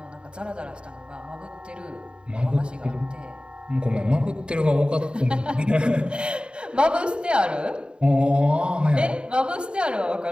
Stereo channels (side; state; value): left; late; 0.052 ms